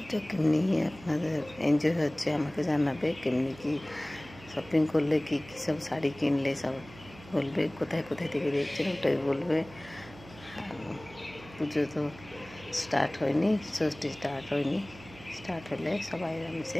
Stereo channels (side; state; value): right; noise; hum, 19 dB below the sound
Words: কেমনি আপনাদের এনজয় হচ্ছে আমাকে জানাবে। কেমনি কি শপিং করলে, কী কী সব শাড়ি কিনলে সব বলবে, কোথায় কোথায় থেকে দেখছেন ওটাই বলবে। পুজো তো স্টার্ট হয়নি, ষষ্ঠী স্টার্ট হয়নি। স্টার্ট হলে সবাই